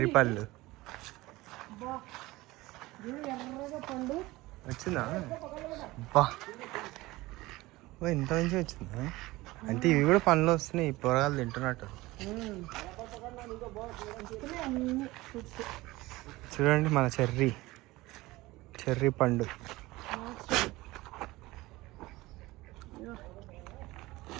పళ్ళు వచ్చిందా? బా ఇంత మంచిగా వచ్చిందా? అంటే ఇవి కూడా పండ్లు వస్తున్నాయి. పొరగాలు తింటున్నట్టు. చూడండి మన చెర్రీ పండు.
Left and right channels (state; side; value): quieter; left; 19.7 dB